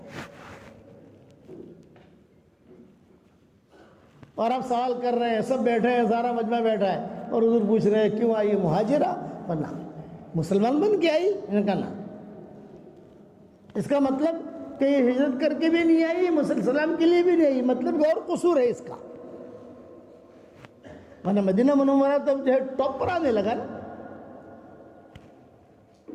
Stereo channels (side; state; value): both; identical; correlation 1.00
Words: اور آپ سوال کر رہے ہیں، سب بیٹھے ہیں، سارا مجمع بیٹھا ہے، اور حضور پوچھ رہے ہیں کیوں آئی مہاجرہ؟ ورنہ مسلمان بن کے آئی؟ ان کا نام، اس کا مطلب کہ یہ ہجرت کر کے بھی نہیں آئی، مسلمان کے لیے بھی نہیں آئی، مطلب اور قصور ہے اس کا۔ ورنہ مدینہ منورہ تب جو ہے ٹاپ پر آنے لگا نا۔